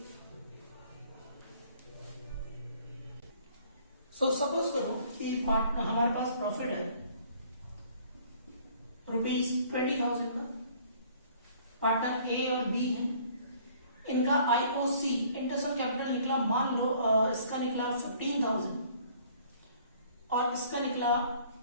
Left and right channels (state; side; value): inverted; both; correlation -0.57